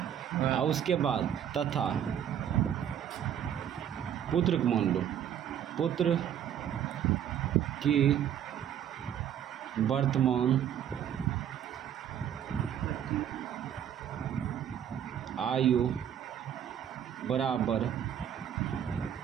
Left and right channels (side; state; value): left; quieter; 9.6 dB